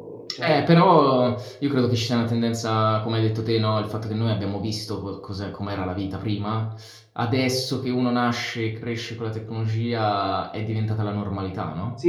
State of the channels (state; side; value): identical; both; correlation 1.00